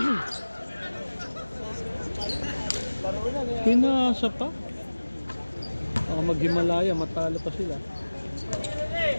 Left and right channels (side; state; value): both; inverted; correlation -1.00